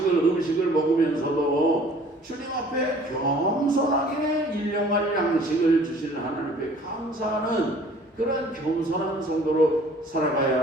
먹으면서도 주님 앞에 겸손하게 일용할 양식을 주시는 하나님 앞에 감사하는 그런 겸손한 성도로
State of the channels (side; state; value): both; normal; correlation 0.52